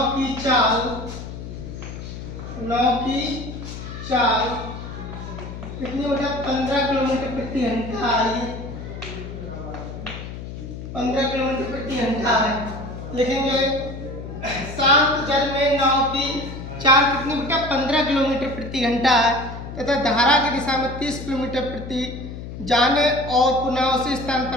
की चाल कितनी हो जाए 15 किलोमीटर प्रति घंटा आई, 15 किलोमीटर प्रति घंटा है। लिखेंगे शांत जल में नाव की चाल कितनी बेटा 15 किलोमीटर प्रति घंटा है तथा धारा की दिशा में 30 किलोमीटर प्रति जाने और पुनः उसी स्थान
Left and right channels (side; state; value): left; noise; hum, 10 dB below the sound